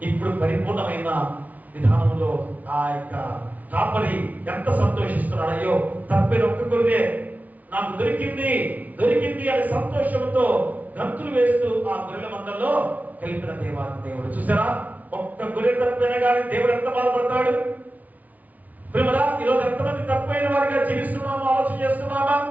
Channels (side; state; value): left; late; 0.074 ms